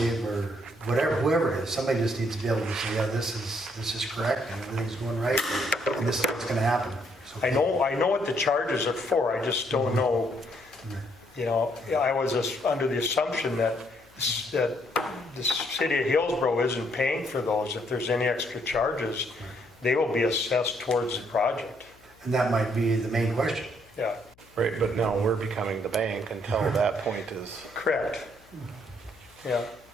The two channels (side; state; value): left; noise; hum, 30 dB below the sound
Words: or whatever, whoever it is, somebody just needs to be able to say, yeah, this is correct and everything's going right and this is what's gonna happen. So- I know what the charges are for. I just don't know, I was under the assumption that the city of Hillsboro isn't paying for those. If there's any extra charges, they will be assessed towards the project. And that might be the main question. Yeah, Right, but now we're becoming the bank until that point is, correct. Yeah.